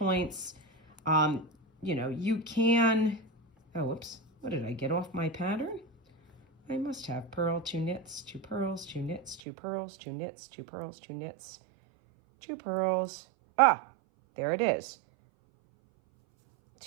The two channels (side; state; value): left; drops out; at 9.4 s